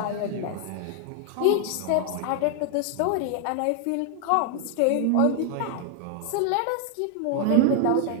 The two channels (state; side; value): different; both; correlation 0.00